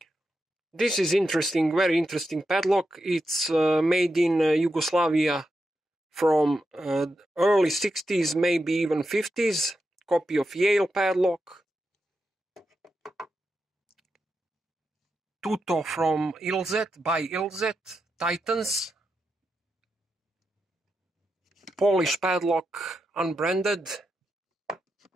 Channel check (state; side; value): normal; both; correlation 0.87